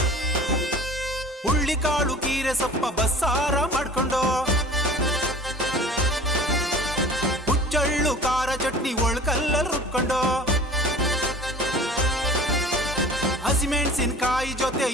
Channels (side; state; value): both; normal; correlation 0.43